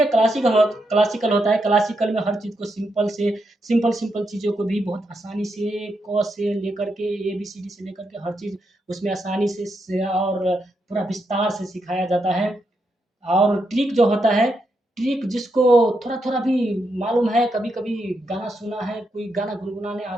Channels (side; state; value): both; normal; correlation 0.82